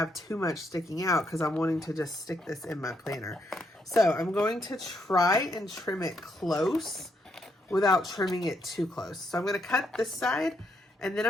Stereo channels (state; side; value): normal; both; correlation 0.76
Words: too much sticking out because I'm wanting to just stick this in my planner. So I'm going to try and trim it close without trimming it too close. So I'm going to cut this side and then